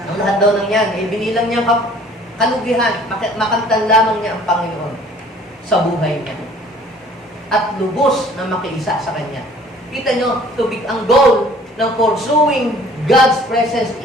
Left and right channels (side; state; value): both; normal; correlation 0.53